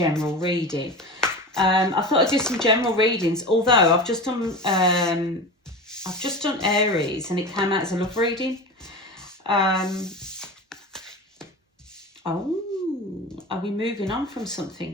reading. I thought I'd do some general readings, although I've just done Aries and it came out as a love reading. Oh, are we moving on from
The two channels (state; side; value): normal; both; correlation 0.29